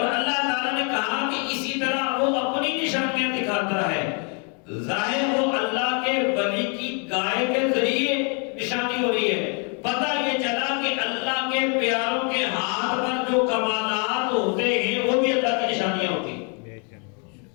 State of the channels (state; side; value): quieter; right; 37.7 dB